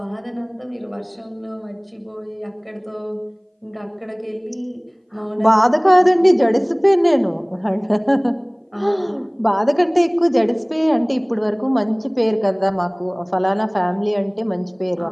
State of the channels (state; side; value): identical; both; correlation 1.00